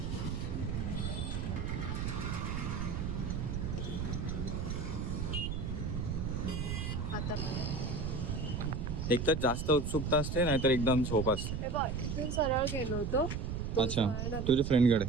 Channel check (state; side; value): noise; right; rumble, 2 dB below the sound